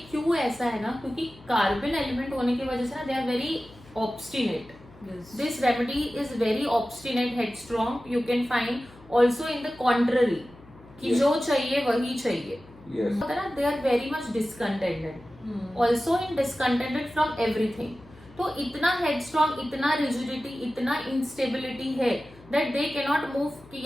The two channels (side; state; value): left; noise; hum, 23 dB below the sound